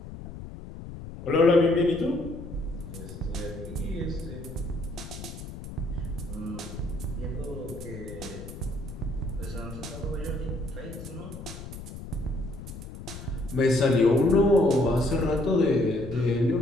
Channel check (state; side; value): noise; left; rumble, 12 dB below the sound